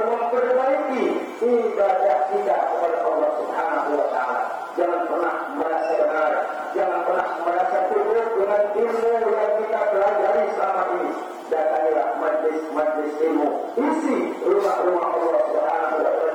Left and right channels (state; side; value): identical; both; correlation 1.00